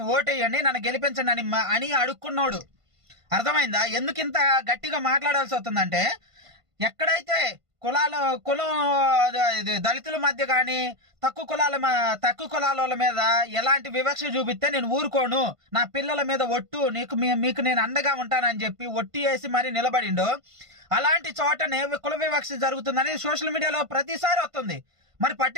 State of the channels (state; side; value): late; left; 1.5 ms